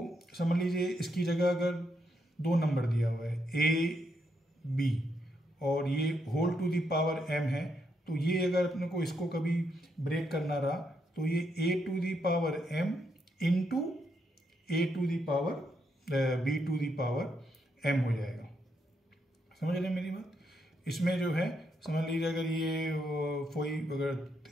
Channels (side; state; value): both; normal; correlation 0.78